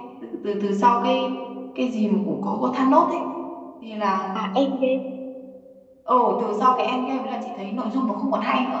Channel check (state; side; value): identical; both; correlation 1.00